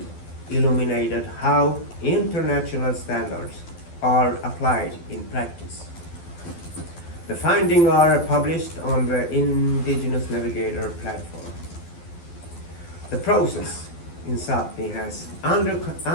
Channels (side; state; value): right; late; 12 ms